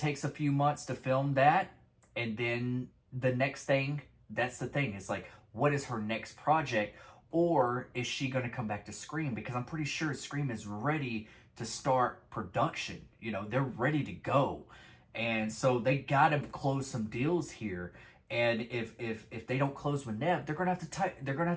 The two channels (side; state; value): both; identical; correlation 1.00